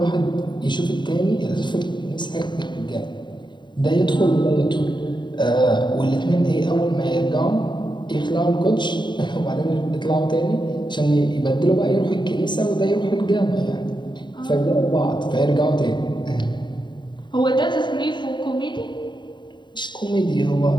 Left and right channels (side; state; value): right; late; 0.22 ms